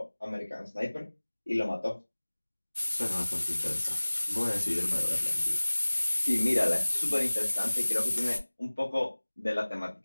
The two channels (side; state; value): both; inverted; correlation -1.00